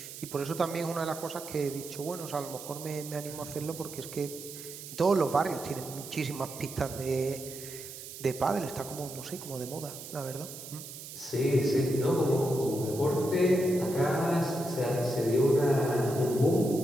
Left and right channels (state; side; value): noise; right; hiss, 12 dB below the sound